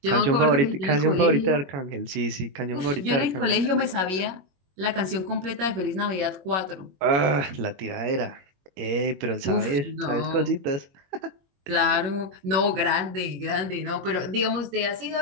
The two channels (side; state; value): left; late; 21 ms